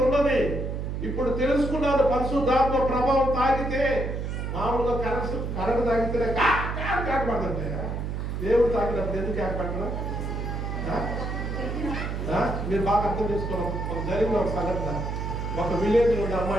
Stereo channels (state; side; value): noise; right; hum, 3 dB below the sound